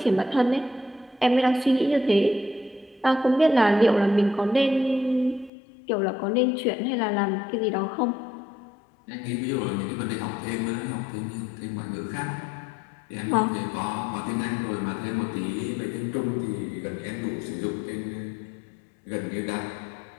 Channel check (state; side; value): drops out; right; at 5.5 s